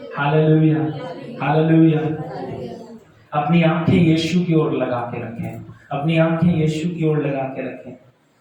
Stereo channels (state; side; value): identical; both; correlation 1.00